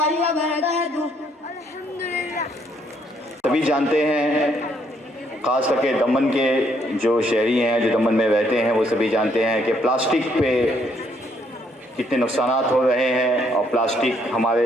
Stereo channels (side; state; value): both; normal; correlation 0.70